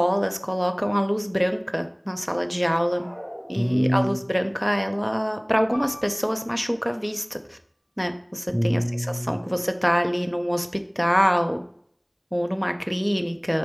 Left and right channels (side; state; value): both; identical; correlation 1.00